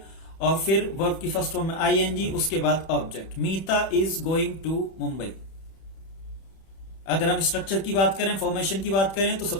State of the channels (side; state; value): right; late; 31 ms